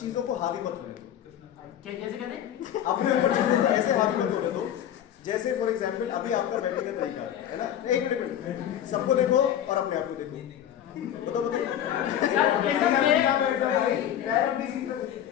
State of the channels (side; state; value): right; quieter; 10.5 dB